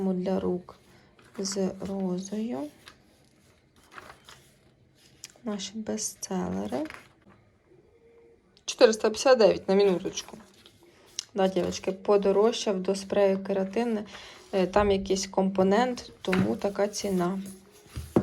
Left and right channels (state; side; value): identical; both; correlation 1.00